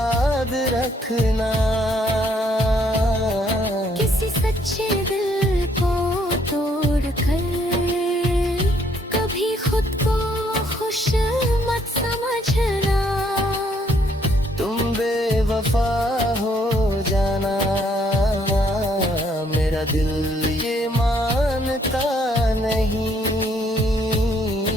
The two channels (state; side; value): normal; both; correlation 0.68